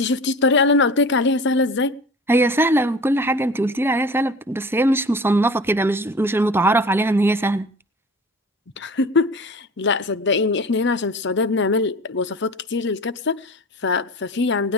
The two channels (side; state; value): both; normal; correlation 0.39